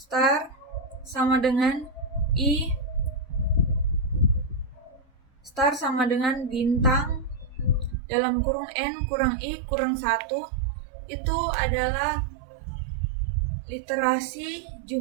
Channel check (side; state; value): left; drops out; at 8.0 s